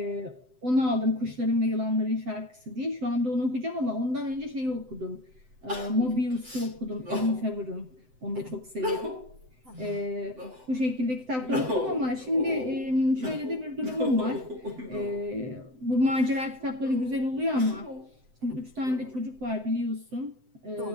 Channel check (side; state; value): left; late; 7.8 ms